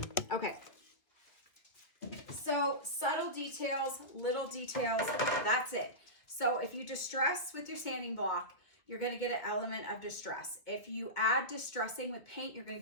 okay. So subtle details, little details, that's it. So if you distress with your sanding block, you're going to get an element of distress. If you add distressing with paint, you're going to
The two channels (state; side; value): late; right; 2.4 ms